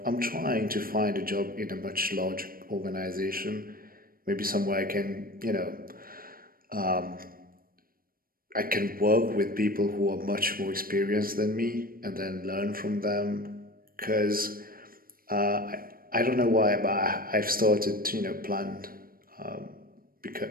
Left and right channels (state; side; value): late; left; 0.42 ms